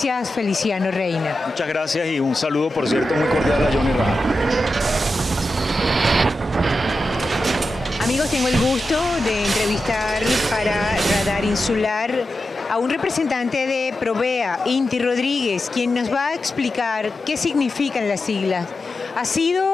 Feliciano Reina. Muchas gracias y un saludo, por cierto, muy cordial a Johnny Rajal. Amigos, tengo el gusto de entrevistar para Radar Insular a un representante de Provea, Inti Rodríguez, quien nos va a explicar qué significan las siglas. Ha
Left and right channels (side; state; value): both; normal; correlation 0.90